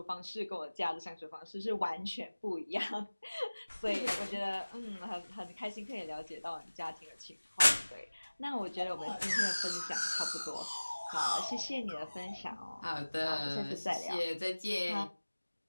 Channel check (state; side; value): inverted; both; correlation -1.00